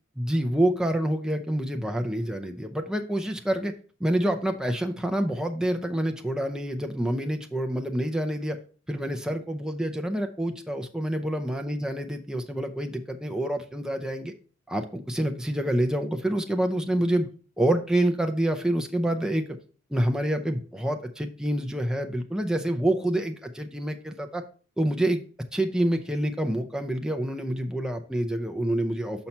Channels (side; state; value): both; normal; correlation 0.89